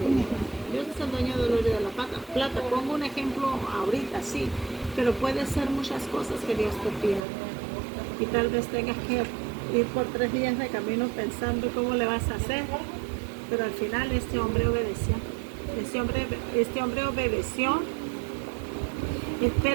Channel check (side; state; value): left; drops out; at 7.2 s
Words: Dios. Dios es el dueño del oro y de la plata. Pongo un ejemplo ahorita, sí, pero puede ser muchas cosas que Dios te pida. Y tal vez tengas que ir por 3 días de camino pensando cómo le vas a hacer, pero al final este hombre obedeció. Este hombre obedeció,